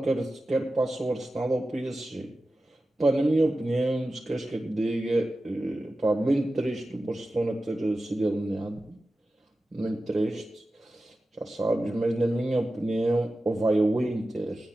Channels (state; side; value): normal; both; correlation 0.94